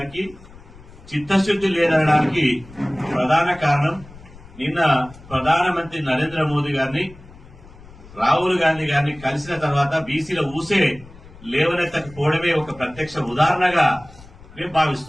చిత్తశుద్ది లేదనడానికి ప్రధాన కారణం నిన్న ప్రధానమంత్రి నరేంద్ర మోదీ గారిని, రాహుల్ గాంధీ గారిని కలిసిన తర్వాత బీసీల ఊసే లేవనెత్తకపోవడమే ఒక ప్రత్యక్ష ఉదాహరణగా మేము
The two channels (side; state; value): left; noise; rumble, 20 dB below the sound